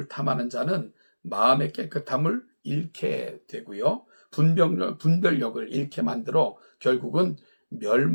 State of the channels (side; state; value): both; inverted; correlation -1.00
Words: 탐하는 자는 마음의 깨끗함을 잃게 되고요. 분별력을 잃게 만들어 결국은